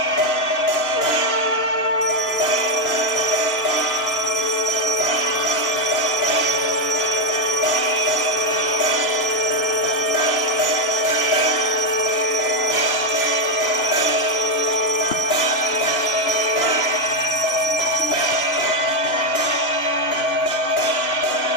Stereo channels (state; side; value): late; right; 2.9 ms